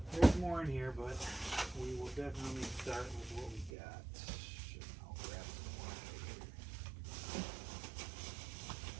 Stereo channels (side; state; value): left; drops out; at 3.7 s